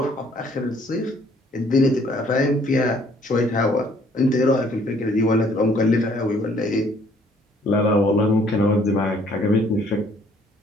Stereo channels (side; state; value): both; normal; correlation 0.61